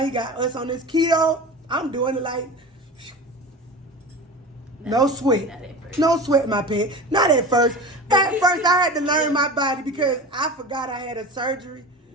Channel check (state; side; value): normal; both; correlation 0.32